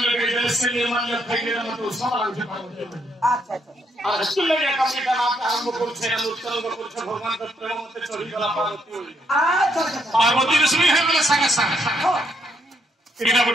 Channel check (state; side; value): normal; both; correlation 0.74